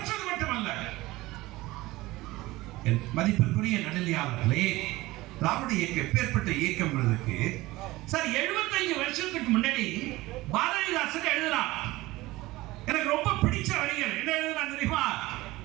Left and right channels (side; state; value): left; quieter; 19.2 dB